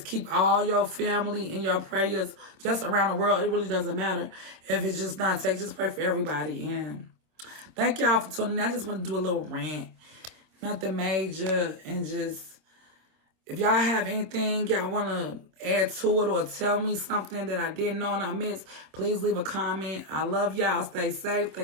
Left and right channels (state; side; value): late; left; 26 ms